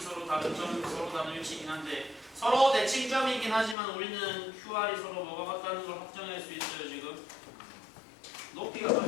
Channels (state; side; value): drops out; right; at 3.8 s